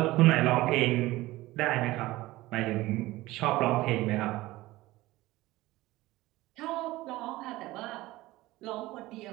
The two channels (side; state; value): left; quieter; 18.2 dB